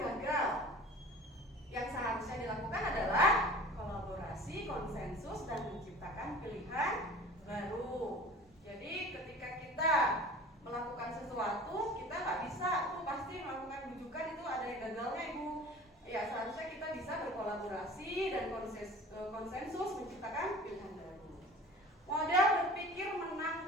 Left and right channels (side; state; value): both; normal; correlation 0.41